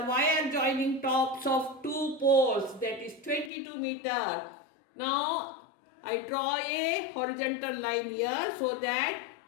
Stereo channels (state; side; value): drops out; right; at 3.5 s